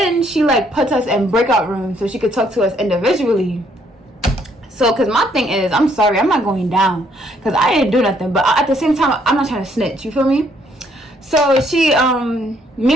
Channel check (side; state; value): both; normal; correlation 0.68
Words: she like puts us in breakout rooms so she could talk to us individually. So, because my thing is, I'm sorry, I'm not going down, because I didn't do nothing. But at the same time, I'm not trying to snitch, you feel me? So she, me and